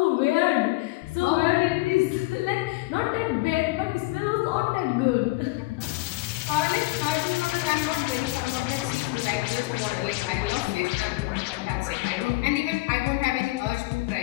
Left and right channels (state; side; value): quieter; right; 21.5 dB